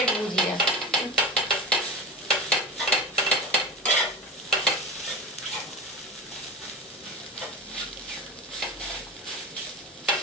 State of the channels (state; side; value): normal; both; correlation 0.27